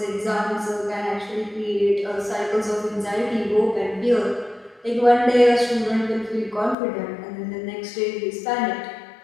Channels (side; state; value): right; drops out; at 6.8 s